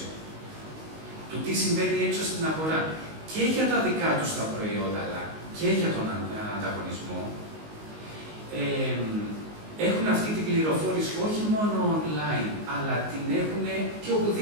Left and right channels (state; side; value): late; left; 19 ms